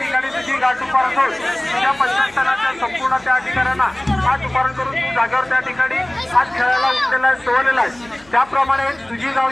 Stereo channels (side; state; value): left; noise; hum, 29 dB below the sound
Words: तुझी गाठ उभारण करून तुझ्या पंचस्थानाच्या संपूर्ण त्या ठिकाणांना आज उभारण करून तू जागेवर त्या ठिकाणी आज खेळायला उठलेला आहे सोडलेला आहे। त्याप्रमाणे तुझी